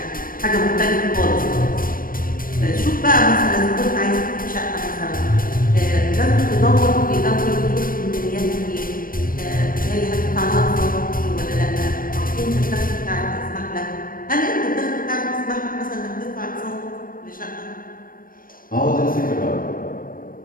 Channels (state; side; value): late; right; 0.41 ms